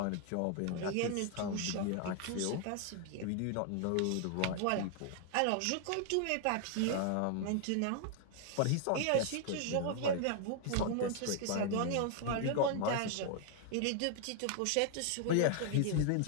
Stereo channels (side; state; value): both; different; correlation 0.00